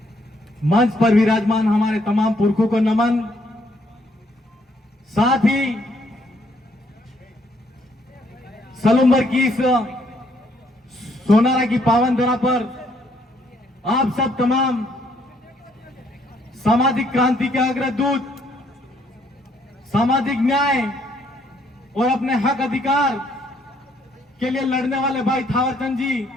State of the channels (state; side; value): normal; both; correlation 0.69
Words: मंच पर विराजमान हमारे तमाम पुरखों को नमन। साथ ही सलूम्बर की इस सोनारा की पावन धरा पर आप सब तमाम सामाजिक क्रांति के अग्रदूत, सामाजिक न्याय और अपने हक अधिकार के लिए लड़ने वाले भाई थावरचंद जी